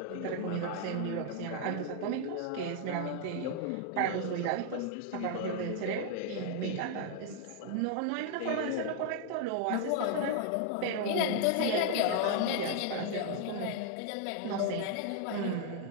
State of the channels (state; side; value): different; both; correlation 0.00